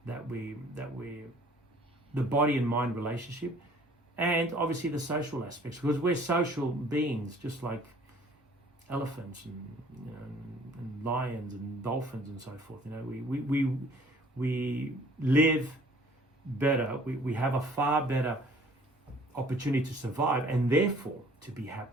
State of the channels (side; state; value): both; normal; correlation 0.55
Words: that we the body and mind relationship, and obviously the social aspects, because we're social beings, just like elephants and lions and dolphins and so forth. We live better. We have a far better opportunity to survive, and therefore to be